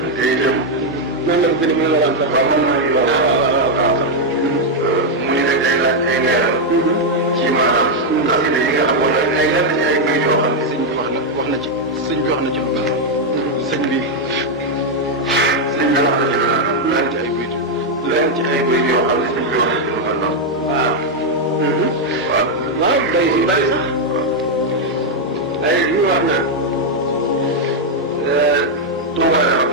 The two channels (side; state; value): both; normal; correlation 0.00